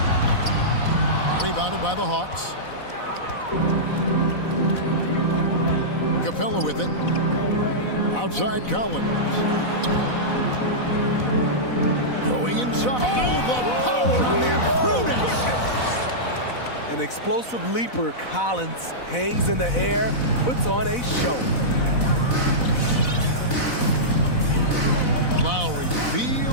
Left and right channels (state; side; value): late; right; 4.0 ms